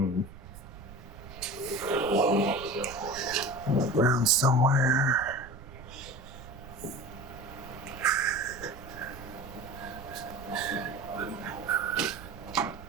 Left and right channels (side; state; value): right; noise; rumble, 16 dB below the sound